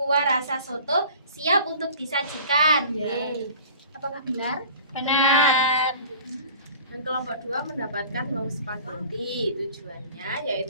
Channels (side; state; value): both; inverted; correlation -0.44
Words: rasa soto siap untuk disajikan. Yeay. Apakah benar? Benar. Dan kelompok 2 mendapatkan wau spaghetti. Tujuannya